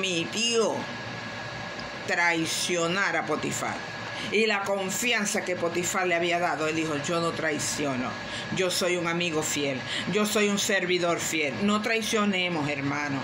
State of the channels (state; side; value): identical; both; correlation 1.00